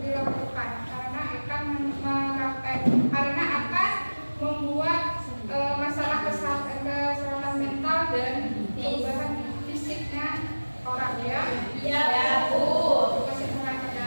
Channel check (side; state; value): both; inverted; correlation -1.00